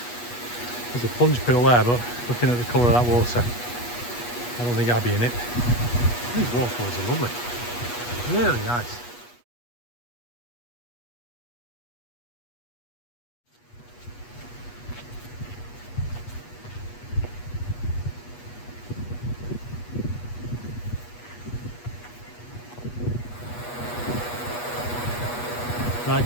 There's a plunge pool there, but looking at the colour of that water, I don't think I'd be in it. These waterfalls are lovely, really nice. Right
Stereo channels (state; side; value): late; right; 8.3 ms